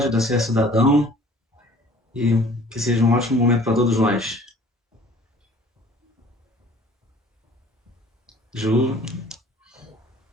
da CS Cidadão, e que seja um ótimo momento para todos nós. Ju,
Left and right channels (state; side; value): normal; both; correlation 0.51